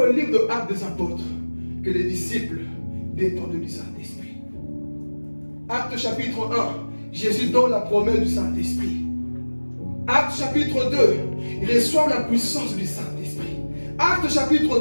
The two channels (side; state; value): both; inverted; correlation -1.00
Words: livre de Actes des Apôtres, que les disciples dépendent du Saint-Esprit. Acte chapitre 1, Jésus donne la promesse du Saint-Esprit. Acte chapitre 2, il reçoit la puissance du Saint-Esprit. Acte